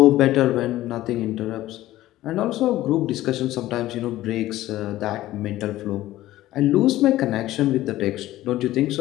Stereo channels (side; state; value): right; quieter; 15.4 dB